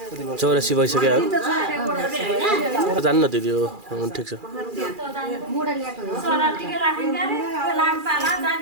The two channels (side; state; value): left; late; 2.4 ms